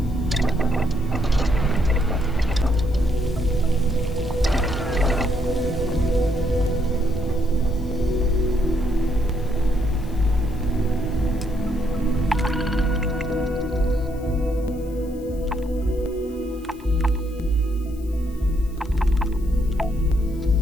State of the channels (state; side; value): noise; left; hiss, 26 dB below the sound